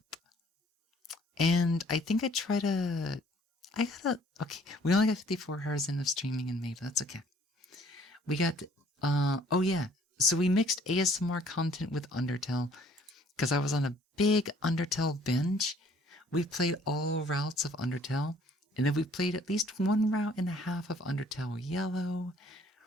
And I think okay, we only got 54 hours in of streaming in May, but that's okay. We got, oh yeah, so we mixed ASMR content with Undertale, because I was on a big Undertale binge. We played all routes of Undertale, and then we played at least one route and a half of Undertale Yellow.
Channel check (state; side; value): normal; both; correlation 0.58